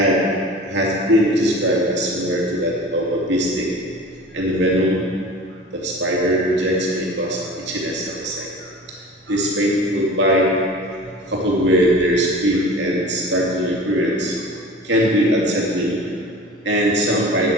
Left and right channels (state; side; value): normal; both; correlation 0.39